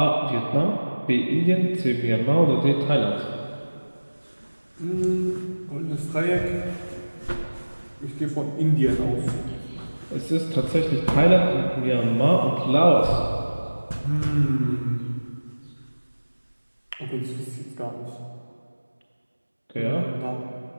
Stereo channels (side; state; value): both; inverted; correlation -1.00